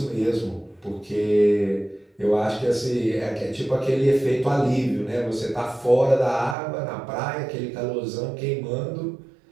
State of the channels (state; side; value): drops out; left; at 6.6 s